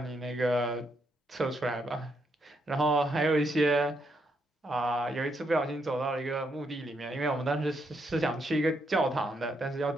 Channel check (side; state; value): both; normal; correlation 0.77